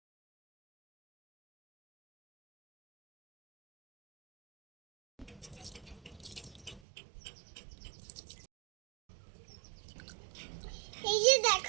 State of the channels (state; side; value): drops out; left; at 6.8 s